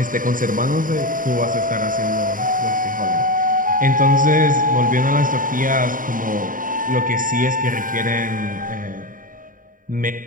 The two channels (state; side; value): late; left; 0.39 ms